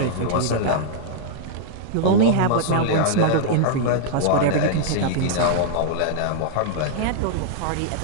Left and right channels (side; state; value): both; different; correlation -0.02